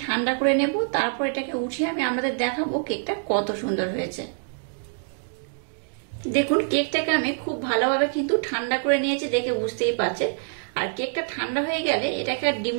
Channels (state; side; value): silent; left; digital silence